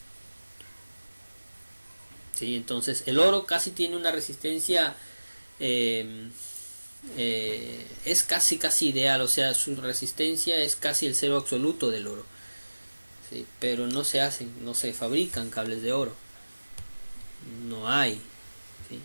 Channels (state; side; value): inverted; both; correlation -1.00